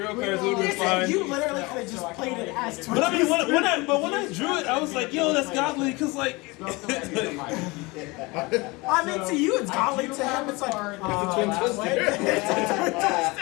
cards. It would have been fine. You literally could have just played it as But I mean, when I drew it, I was like, yo, that's godly, cause like. I mean, to you it's godly. To him it's like,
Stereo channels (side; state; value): right; quieter; 24.6 dB